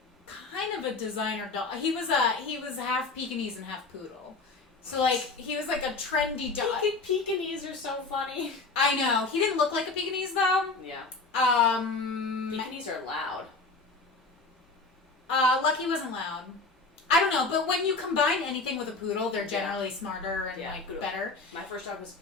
kind of a designer dog. He was half Pekingese and half poodle. So like he was like a trendy dog. Pekingese are so funny. I know. He didn't look like a Pekingese though. Yeah. Um. Pekingese are loud. Lucky wasn't loud. I don't know, but when you combine anything with a poodle, they're generally smarter and poodle. better. My first dog was a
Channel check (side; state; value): right; quieter; 3.8 dB